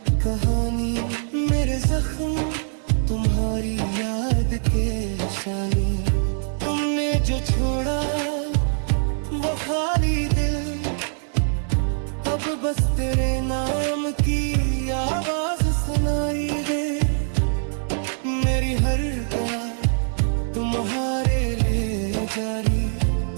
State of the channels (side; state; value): left; silent; 63 dB below the other